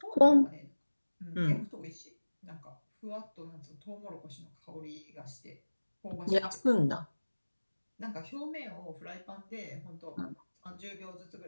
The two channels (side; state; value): both; inverted; correlation -1.00